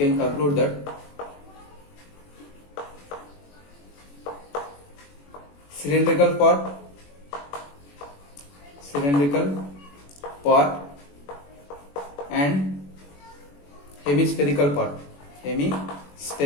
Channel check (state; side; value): late; right; 21 ms